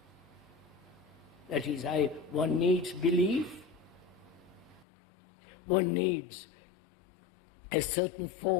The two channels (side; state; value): right; drops out; at 4.9 s